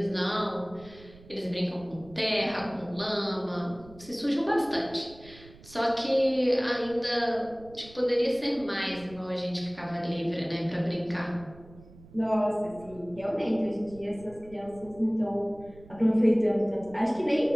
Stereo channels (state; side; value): noise; right; rumble, 21 dB below the sound